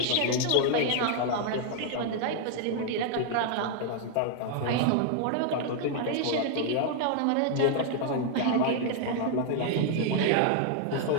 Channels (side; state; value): both; different; correlation 0.00